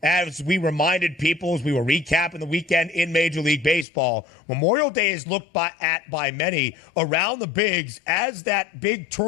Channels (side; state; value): right; drops out; at 3.9 s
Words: as we reminded people as we were recapping the weekend in Major League Baseball, Memorial Day is looked at by many around the bigs as that big